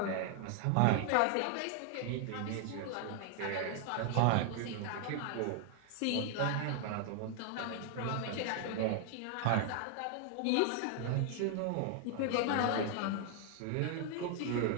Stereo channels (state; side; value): different; both; correlation 0.00